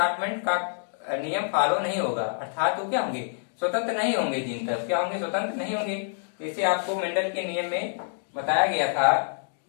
का नियम फॉलो नहीं होगा। अर्थात वो क्या होंगे, स्वतंत्र नहीं होंगे जीन, तब क्या होंगे, स्वतंत्र नहीं होंगे। जैसे आपको मेंडल के नियम में बताया गया था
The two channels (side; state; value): right; silent; digital silence